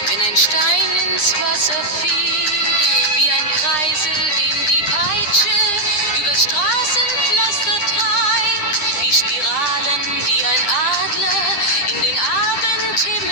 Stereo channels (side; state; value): right; late; 9.8 ms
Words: wenn ein Stein ins Wasser fiel, wie ein Kreisel, den die Peitsche über Straßenpflaster treibt, wie Spiralen, die ein Adler in den